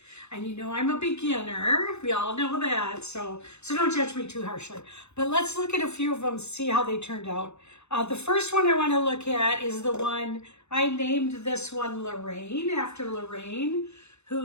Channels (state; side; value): late; right; 0.81 ms